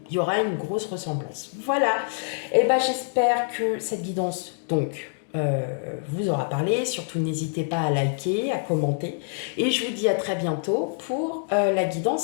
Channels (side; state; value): right; silent; digital silence